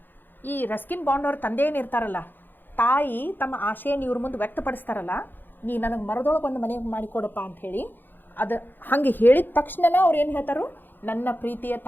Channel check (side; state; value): right; late; 0.092 ms